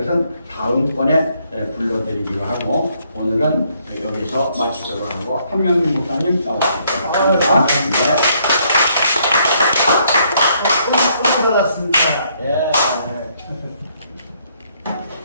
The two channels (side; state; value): both; inverted; correlation -0.70